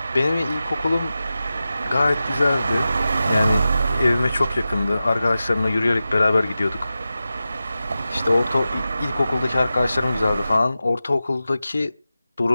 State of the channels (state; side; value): inverted; both; correlation -0.93